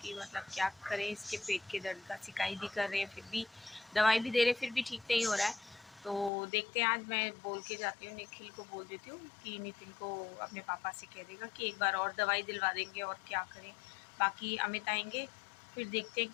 कि मतलब क्या करें। इसके पेट के दर्द का शिकायत भी कर रहे हैं, फिर भी दवाई भी दे रहे, फिर भी ठीक नहीं हो रहा है। तो देखते हैं, आज मैं बोल के जाती हूँ, निखिल को बोल देती हूँ कि नितिन को अपने पापा से कह देगा कि एक बार और दवाई दिलवा देंगे, और क्या करें। बाकी अमित आएंगे, फिर देखते हैं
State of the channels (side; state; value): right; drops out; at 6.3 s